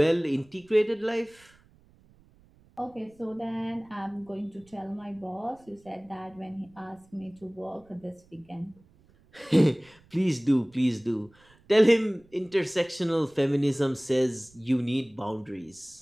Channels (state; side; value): noise; right; rumble, 30 dB below the sound